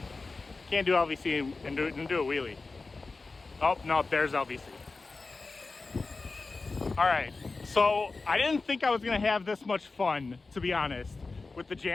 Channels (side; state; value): right; quieter; 3.8 dB